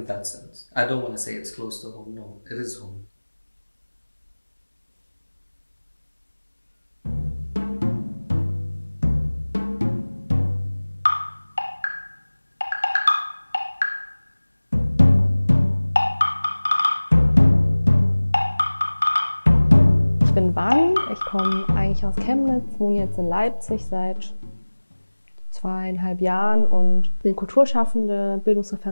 that sense. I don't want to say it's close to home. No, it is home. Ich bin Van, ich komme eigentlich aus Chemnitz, wohne jetzt in Leipzig seit 2,5 Jahren und bin Kulturschaffende,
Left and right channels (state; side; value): inverted; both; correlation -1.00